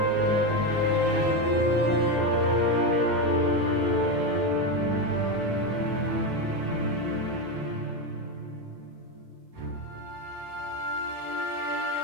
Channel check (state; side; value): late; left; 9.1 ms